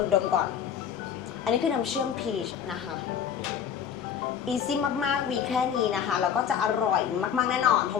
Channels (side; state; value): right; quieter; 8.2 dB